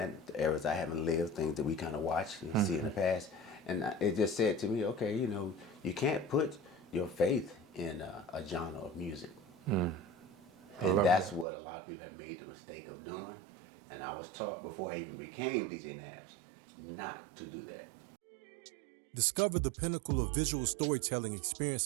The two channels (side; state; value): left; drops out; at 11.5 s